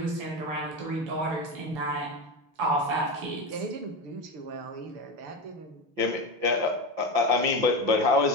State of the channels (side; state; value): left; late; 5.8 ms